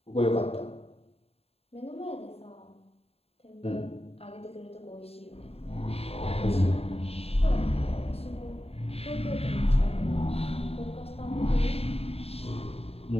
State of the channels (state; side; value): late; right; 0.29 ms